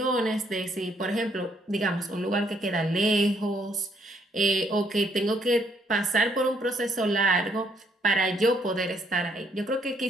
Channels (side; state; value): both; normal; correlation 0.69